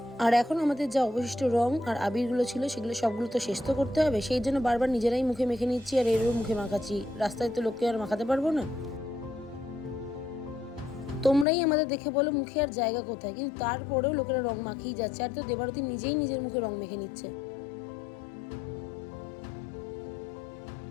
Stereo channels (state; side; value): drops out; right; at 11.5 s